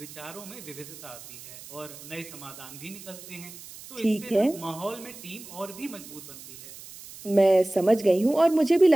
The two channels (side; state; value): right; noise; hiss, 16 dB below the sound